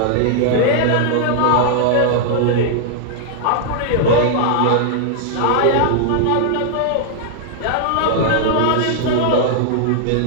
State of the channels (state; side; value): different; both; correlation -0.01